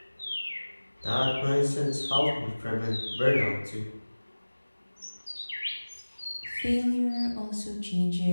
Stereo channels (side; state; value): both; inverted; correlation -1.00